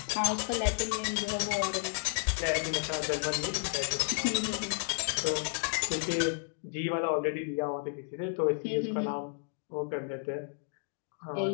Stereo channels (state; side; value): silent; right; 56 dB below the other